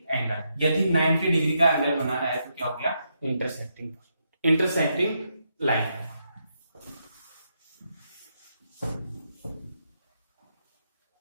angle. यदि 90 डिग्री का एंगल बनाना है तो क्या हो गया, इंटरसेक्टिंग लाइन।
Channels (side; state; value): both; inverted; correlation -0.81